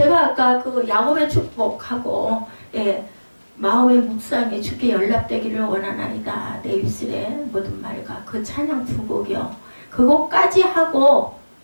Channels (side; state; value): both; inverted; correlation -1.00